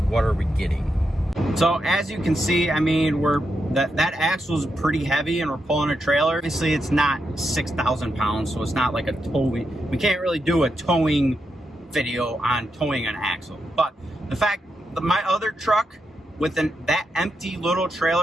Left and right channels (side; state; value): both; normal; correlation 0.84